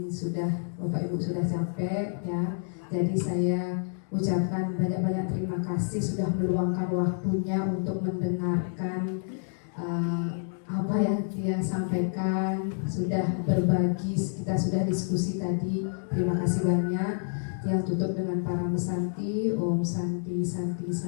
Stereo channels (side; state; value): right; silent; digital silence